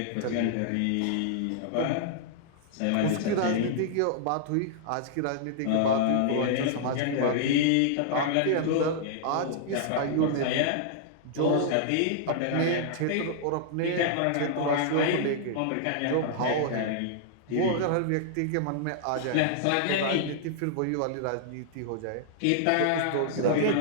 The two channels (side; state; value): both; different; correlation -0.01